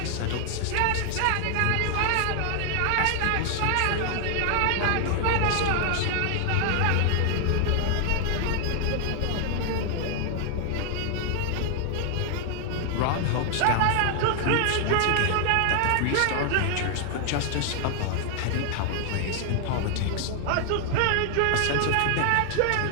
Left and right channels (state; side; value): different; both; correlation 0.00